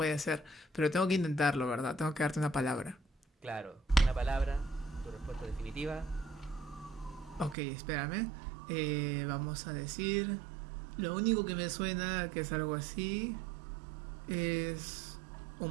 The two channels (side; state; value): left; drops out; at 7.6 s